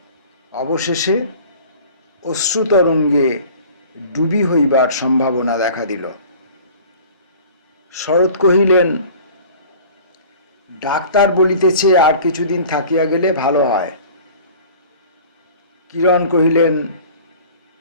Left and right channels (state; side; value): inverted; both; correlation -0.45